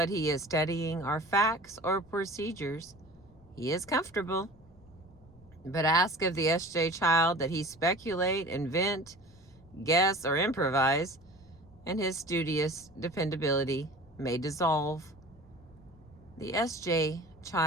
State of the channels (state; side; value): noise; left; rumble, 26 dB below the sound